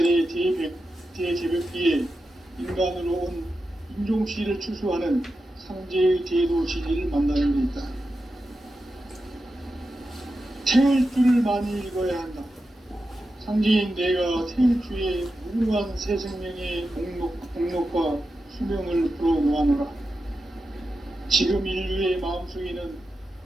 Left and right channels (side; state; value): both; normal; correlation 0.90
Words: 대개벽기에 인간으로 온 인종시를 추수하는 상제의 대도 진리를 만나는 데 있다. 태울 줄을 많이 읽어야 한다. 상제인 내가 태울 주의 무궁한 새 생명의 목록과 수명을 풀어놓아노라. 지금 인류의 마음속에는